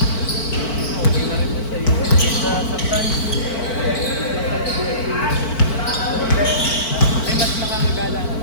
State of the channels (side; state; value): right; late; 4.5 ms